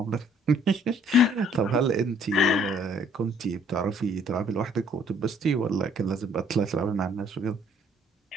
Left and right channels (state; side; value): normal; both; correlation 0.61